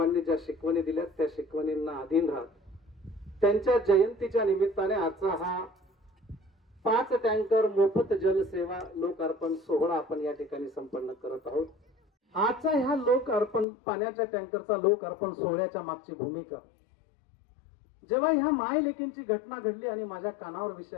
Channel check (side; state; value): right; drops out; at 13.7 s